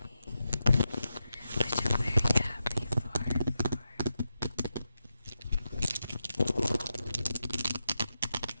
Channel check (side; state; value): both; inverted; correlation -0.89